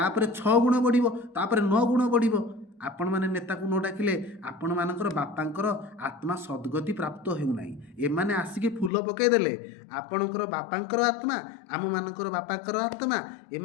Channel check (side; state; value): right; drops out; at 8.9 s